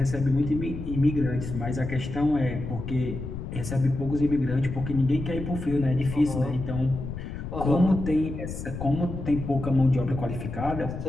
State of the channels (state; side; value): noise; left; rumble, 7 dB below the sound